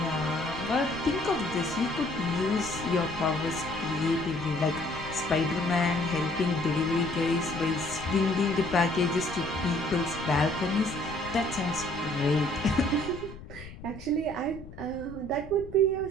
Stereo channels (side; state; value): left; noise; rumble, 15 dB below the sound